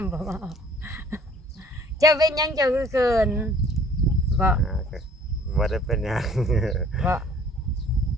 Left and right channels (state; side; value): normal; both; correlation 0.54